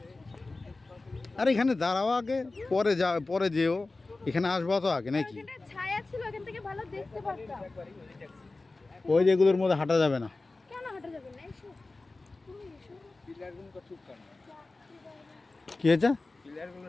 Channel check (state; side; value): quieter; right; 3.3 dB